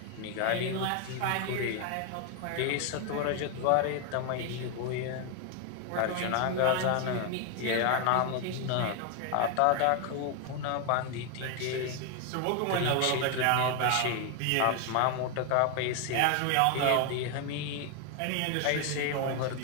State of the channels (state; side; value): different; both; correlation 0.01